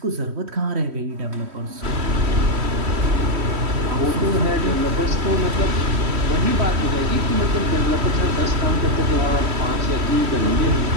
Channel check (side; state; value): left; late; 3.1 ms